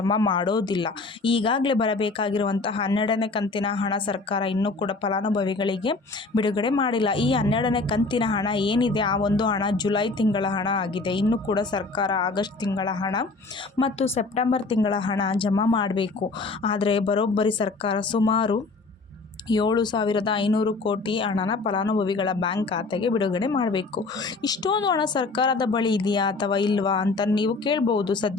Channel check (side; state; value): right; quieter; 3.7 dB